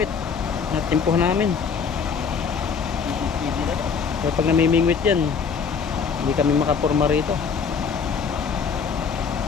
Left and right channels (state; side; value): quieter; right; 6.1 dB